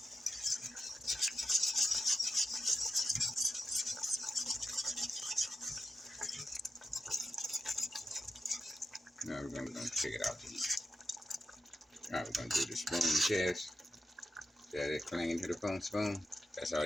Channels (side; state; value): both; normal; correlation 0.90